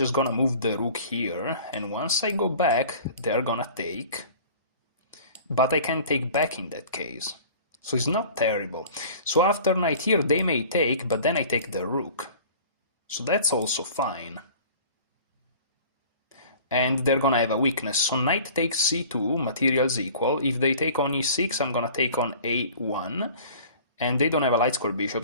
gonna move the rook here, and once I go back, they are gonna take. But I can take back in that case. So it's not terrible. So after knight here, they may take, but then I take the rook. So that's also fine. And they're gonna have a weakness. So knight takes c2, materials equal. If they take on e6, I'm gonna take on a1. And they don't have a light square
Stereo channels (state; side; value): inverted; both; correlation -0.46